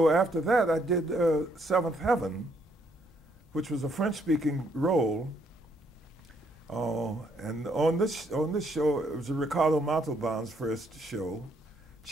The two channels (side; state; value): both; normal; correlation 0.71